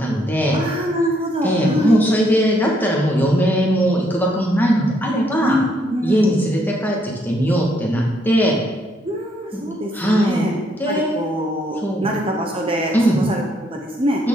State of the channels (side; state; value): both; normal; correlation 0.72